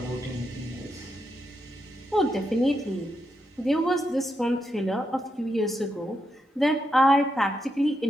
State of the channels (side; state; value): both; normal; correlation 0.83